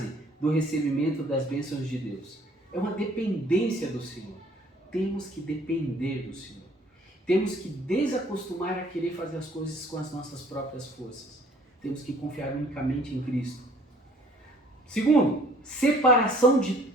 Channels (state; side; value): normal; both; correlation 0.56